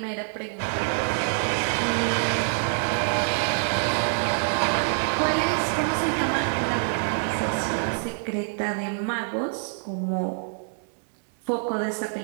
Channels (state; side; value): silent; left; digital silence